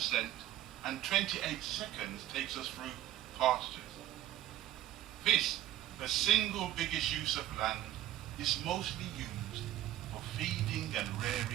and 28 seconds takes us through pastures. This, the single biggest use of land, is mostly used for feeding and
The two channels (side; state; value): left; quieter; 13.4 dB